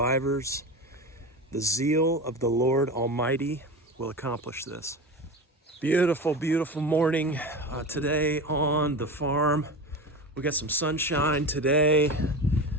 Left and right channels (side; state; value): both; normal; correlation 0.27